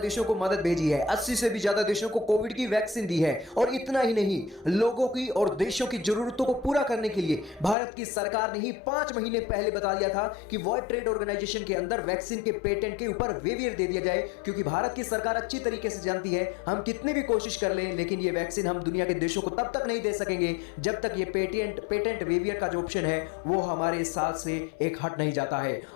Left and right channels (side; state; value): right; drops out; at 7.8 s